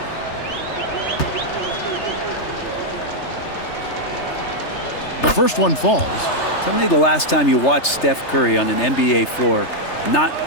The first one falls. Tell me the last time you watched Steph Curry on an NBA floor not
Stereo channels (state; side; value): late; right; 3.3 ms